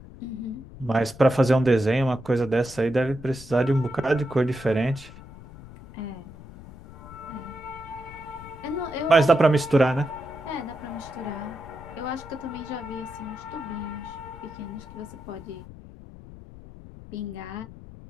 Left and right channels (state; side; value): noise; left; rumble, 16 dB below the sound